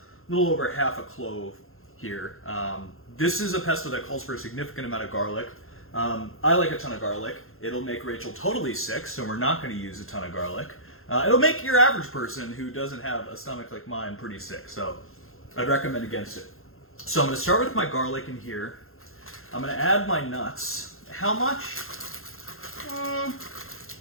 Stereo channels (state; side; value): late; right; 0.61 ms